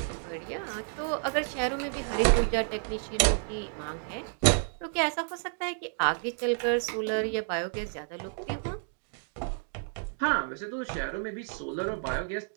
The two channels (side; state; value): left; silent; 57 dB below the other